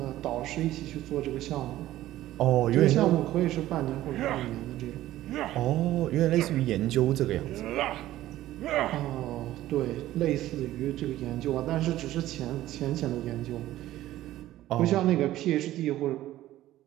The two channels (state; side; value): quieter; left; 14.7 dB